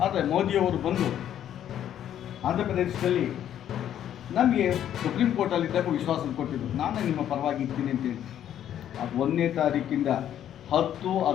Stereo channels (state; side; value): quieter; right; 10.6 dB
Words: ಆದರೆ ಮೋದಿಯವರು ಬಂದು ಆಂಧ್ರ ಪ್ರದೇಶದಲ್ಲಿ ನಮಗೆ ಸುಪ್ರೀಂ ಕೋರ್ಟಲ್ಲಿದ್ದಾಗ ವಿಶ್ವಾಸ ಕೊಟ್ಟಿದ್ದರು, ನಾನು ನಿಮ್ಮ ಪರವಾಗಿ ಇರ್ತೀನಿ ಅಂತೇಳಿ. ಅದು 1ನೇ ತಾರೀಕಿಂದ